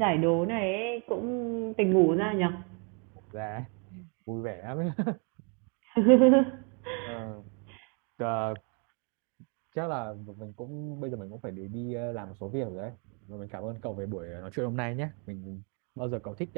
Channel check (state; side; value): quieter; left; 36.2 dB